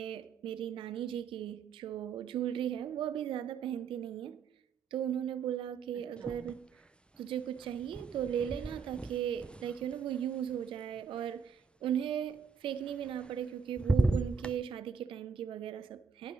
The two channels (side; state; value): left; quieter; 6.0 dB